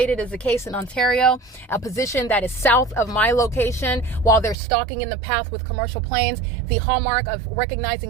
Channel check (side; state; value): left; drops out; at 4.5 s